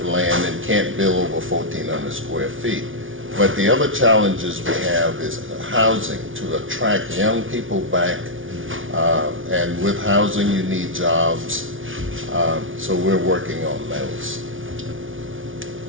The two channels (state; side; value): late; left; 0.57 ms